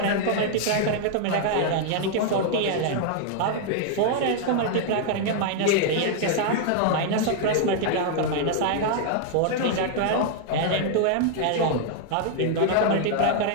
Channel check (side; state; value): both; different; correlation 0.00